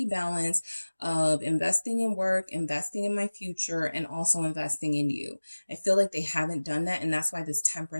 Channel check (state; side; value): inverted; both; correlation -1.00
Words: balance of investing in work, investing in my future, and also investing in you. I feel like they haven't done that, and that's why this